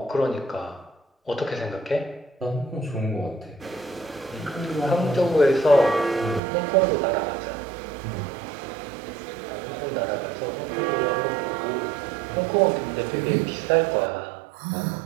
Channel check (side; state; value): left; drops out; at 6.4 s